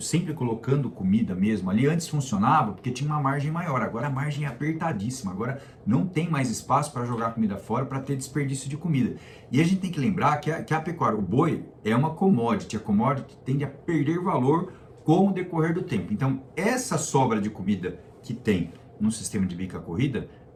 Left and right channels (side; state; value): both; identical; correlation 1.00